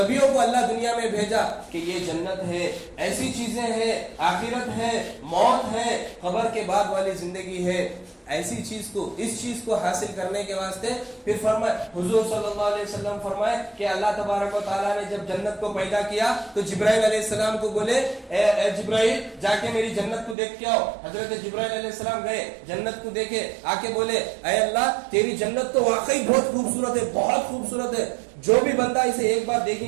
کو اللہ دنیا میں بھیجا کہ یہ جنت ہے, ایسی چیزیں ہیں, آخرت ہے, موت ہے, قبر کے بعد والی زندگی ہے. ایسی چیز کو, اس چیز کو حاصل کرنے کے واسطے پھر فرمائے, حضور صلی اللہ علیہ وسلم فرمائے کہ اللہ تبارک و تعالیٰ نے جب جنت کو پیدا کیا تو جبرائیل علیہ السلام کو بولے, اے جبرائیل جا کے میری جنت کو دیکھ کے آؤ. حضرت جبرائیل علیہ السلام گئے, جنت کو دیکھے, آ کے بولے, اے اللہ تیری جنت تو واقعی بہت خوبصورت ہے, بہت خوبصورت ہے. جو بھی بندہ اسے ایک بار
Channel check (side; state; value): left; drops out; at 20.4 s